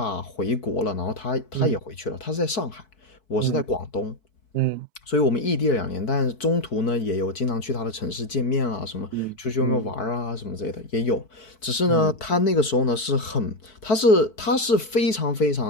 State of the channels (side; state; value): right; late; 4.6 ms